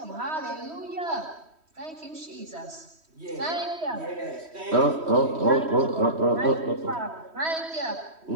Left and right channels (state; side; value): late; left; 3.1 ms